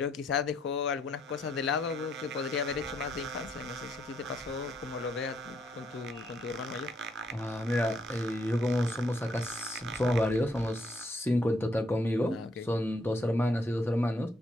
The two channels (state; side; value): normal; both; correlation 0.72